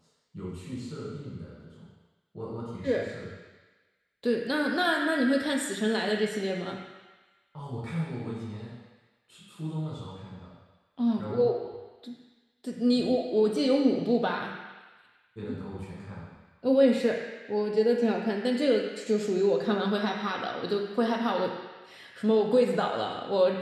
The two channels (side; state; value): both; identical; correlation 1.00